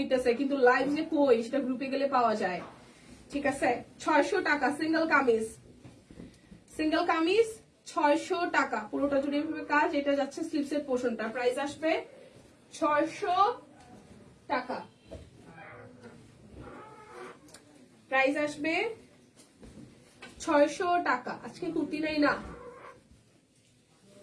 কিন্তু লাইভ যে কই সেটা গ্রুপে গেলে পাওয়া যায়। ঠিক আছে, 600 টাকা সিঙ্গেল কামিজ, সিঙ্গেল কামিজ 600 টাকা, পুরোটা জুড়ে এভাবে কাজ। এটা যাচ্ছে স্লিপসের পোর্শনটা, প্রাইস আসবে 600 টাকা, প্রাইস আসবে 600 টাকা। আজকে কুর্তি নাই না,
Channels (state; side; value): identical; both; correlation 1.00